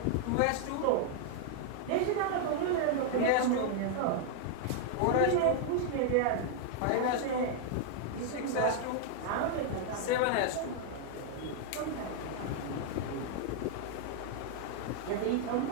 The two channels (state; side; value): different; both; correlation -0.01